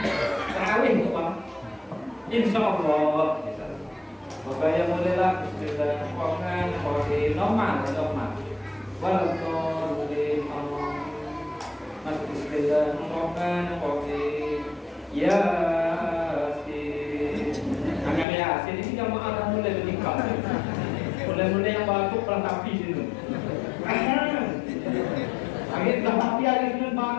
terawih tuh bang. Insya Allah. Maka yang mulailah Bismillahirrahmanirrahim. Normal. Walaqur'an Allah. Masuk Bismillahirrahmanirrahim. Yasin. Agak Yasin ini jamaah dah mulai bernikah. Mulai yang batuk pelatapi situ. Akhirnya pelatapi ada situ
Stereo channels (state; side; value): drops out; right; at 18.2 s